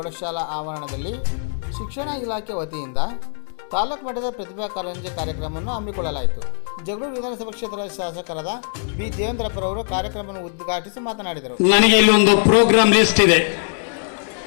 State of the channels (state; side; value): silent; right; 60 dB below the other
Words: ಆವರಣದಲ್ಲಿ ಶಿಕ್ಷಣ ಇಲಾಖೆ ವತಿಯಿಂದ ತಾಲೂಕು ಮಟ್ಟದ ಪ್ರತಿಭಾ ಕಾರಂಜಿ ಕಾರ್ಯಕ್ರಮವನ್ನು ಹಮ್ಮಿಕೊಳ್ಳಲಾಯಿತು. ಜಗಳೂರು ವಿಧಾನಸಭಾ ಕ್ಷೇತ್ರದ ಶಾಸಕರಾದ ಬಿ ದೇವೇಂದ್ರಪ್ಪರವರು ಕಾರ್ಯಕ್ರಮವನ್ನು ಉದ್ಘಾಟಿಸಿ ಮಾತನಾಡಿದರು. ನನಗೆ ಇಲ್ಲೊಂದು ಪ್ರೋಗ್ರಾಮ್ ಲಿಸ್ಟ್ ಇದೆ.